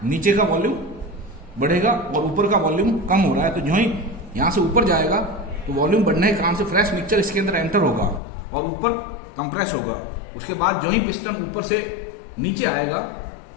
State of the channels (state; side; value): drops out; right; at 8.2 s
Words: नीचे का वॉल्यूम बढ़ेगा और ऊपर का वॉल्यूम कम हो रहा है। तो जो ही यहां से ऊपर जाएगा तो वॉल्यूम बढ़ने के कारण से फ्रेश मिक्सचर इसके अंदर एंटर होगा और ऊपर कंप्रेस होगा। उसके बाद जो ही पिस्टन ऊपर से नीचे आएगा